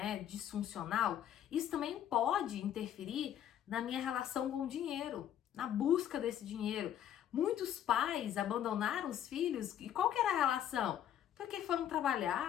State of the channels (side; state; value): right; quieter; 10.5 dB